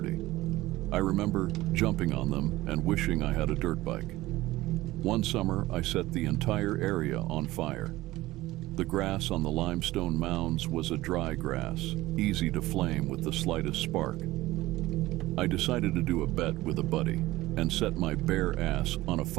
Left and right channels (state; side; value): quieter; left; 17.8 dB